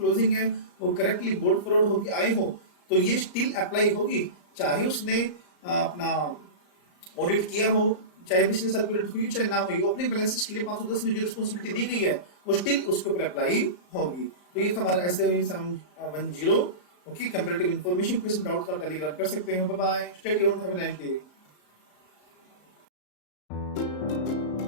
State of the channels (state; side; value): late; right; 34 ms